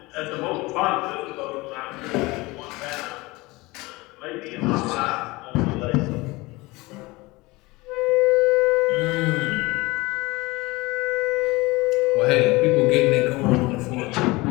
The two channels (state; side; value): quieter; right; 22.2 dB